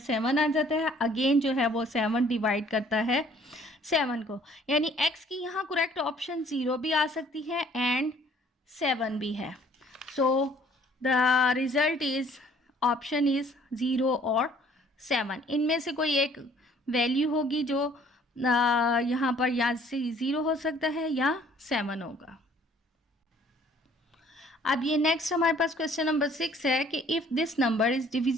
आ जाता है। अगेन जो है वो 7 डिवाइड करता है 7 को, यानी x की यहाँ करेक्ट ऑप्शन 0 भी आ सकती है एंड 7 भी है। So the result is option is 0 और 7, इनमें से कोई एक वैल्यू होगी जो यहाँ पर या से 0 हो सकता है या 7 होगा। अब ये नेक्स्ट हमारे पास क्वेश्चन नंबर 6 है कि if this number is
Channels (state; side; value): normal; both; correlation 0.58